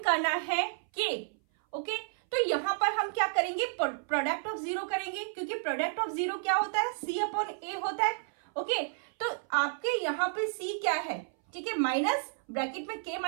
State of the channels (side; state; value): left; silent; 57 dB below the other